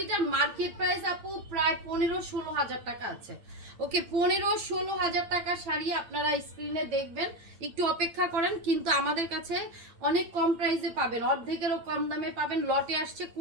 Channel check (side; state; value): left; late; 8.8 ms